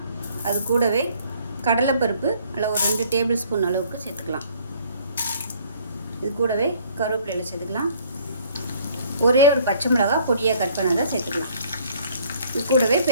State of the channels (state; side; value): inverted; both; correlation -0.59